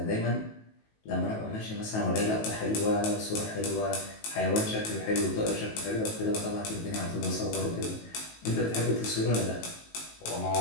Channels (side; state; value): right; late; 19 ms